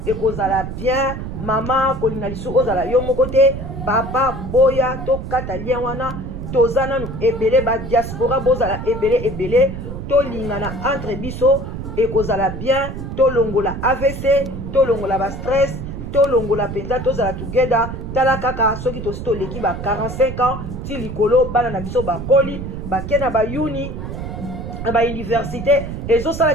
et kozala bien, maman kolinga lisu ozala yo moko te, papa boya to kata lien wana, tozana nu ebele ba diaspora bozala ebele to lingana entre biso et kozala bien, to longola AVC, to longola ba stress, to longola penza tozala together, tala kaka soki to leki ba 45 ans ti likolo bana na biso ba koli ba kena ba uni ba université ezosala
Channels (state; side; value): noise; right; rumble, 7 dB below the sound